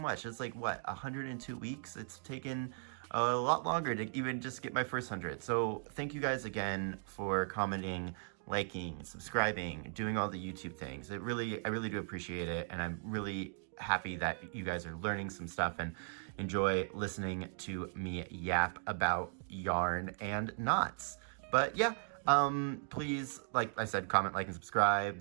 It's like, what, 102 weeks? It's taken a lot longer to even just get my first 100. So thank you guys again for commenting, liking, subscribing, doing all the YouTube things. I really do appreciate it. And I'm really happy that you guys are learning some stuff and enjoy listening to me yap about yarn and knots. But yeah, please, like I said, comment, like, and subscribe.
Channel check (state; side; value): silent; left; digital silence